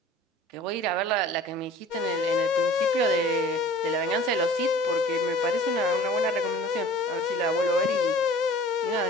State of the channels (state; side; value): normal; both; correlation 0.46